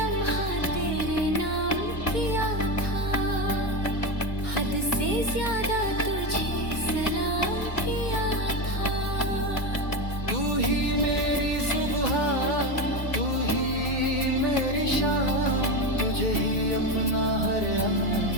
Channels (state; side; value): late; right; 2.1 ms